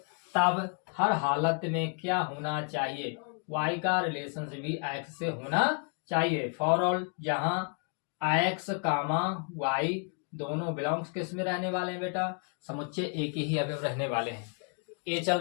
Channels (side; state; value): right; quieter; 39.0 dB